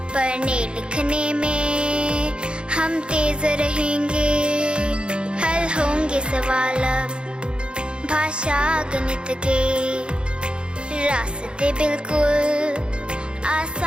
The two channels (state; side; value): late; left; 0.054 ms